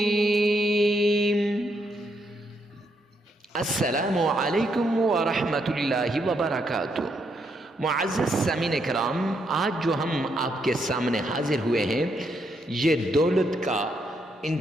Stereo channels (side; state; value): both; normal; correlation 0.77